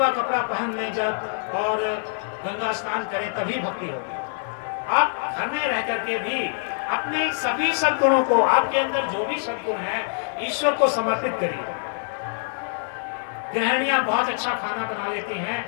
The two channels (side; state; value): right; silent; digital silence